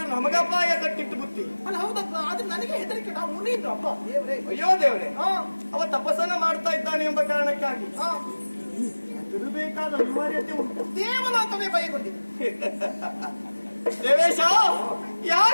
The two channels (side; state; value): both; inverted; correlation -1.00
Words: ನಮಗಪಾಯ ಕಟ್ಟಿಟ್ಟು ಬುತ್ತಿ. ಅಲ್ಲ ಹೌದಪ್ಪ, ಆದ್ರೆ ನನಗೆ ಹೆದರಿಕೆ. ನಾವು ಮುನಿದ್ರು ಅಪ್ಪ ದೇವ್ರೆ. ಅಯ್ಯೋ ದೇವ್ರೆ, ಅವ ತಪಸ್ಸನ್ನ ಮಾಡ್ತಾ ಇದ್ದಾನೆ ಎಂಬ ಕಾರಣಕ್ಕಾಗಿ ಹೆದರಬೇಕಾದ ಅನಿವಾರ್ಯತೆ ಉಂಟು. ದೇವಲೋಕವೇ ಭಯಗೊಂಡಿದೆ. ದೇವೇಶ,